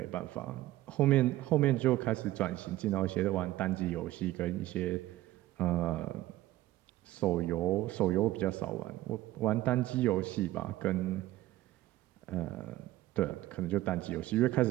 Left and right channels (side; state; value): left; quieter; 15.8 dB